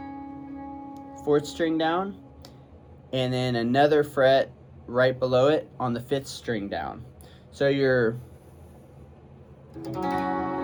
4th string down, and then another fret right below it on the 5th string down. So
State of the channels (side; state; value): both; identical; correlation 1.00